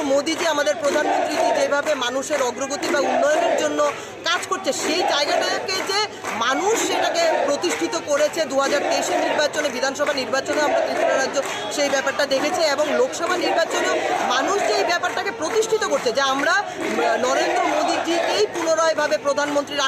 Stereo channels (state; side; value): identical; both; correlation 1.00